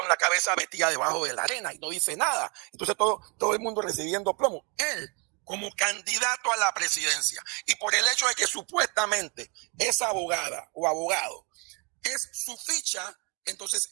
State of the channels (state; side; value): quieter; left; 33.1 dB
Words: la cabeza metida debajo de la arena y no dice nada. Entonces todo el mundo recibiendo plomo. Él, como candidato a la presidencia, y por el hecho de que supuestamente esa abogada o abogado es su ficha,